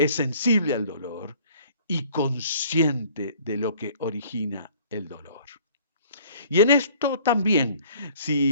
sensible al dolor y consciente de lo que origina el dolor. Y en esto también,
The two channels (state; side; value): inverted; both; correlation -0.54